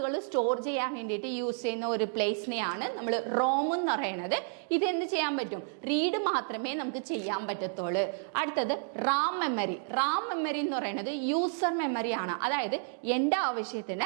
സ്റ്റോർ ചെയ്യാൻ വേണ്ടിയിട്ട് യൂസ് ചെയ്യുന്ന ഒരു പ്ലേസിനെയാണ് നമ്മൾ റോം എന്ന് പറയുന്നത്. ഇത് എന്ത് ചെയ്യാൻ പറ്റും, റീഡ് മാത്രമേ നമുക്ക് ചെയ്യാൻ പറ്റത്തുള്ളൂ. അടുത്തത് റാം മെമ്മറി എന്ന് പറയുന്നത് യൂസർ മെമ്മറിയാണ്. അതായത് എൻ്റെ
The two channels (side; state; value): left; silent; 57 dB below the other